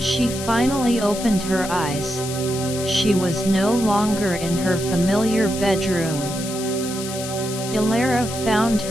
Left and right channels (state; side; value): noise; left; hiss, 9 dB below the sound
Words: finally opened her eyes, she was no longer in her familiar bedroom. Elara found